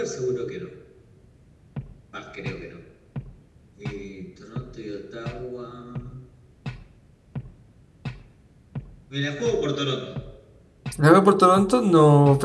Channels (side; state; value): both; identical; correlation 1.00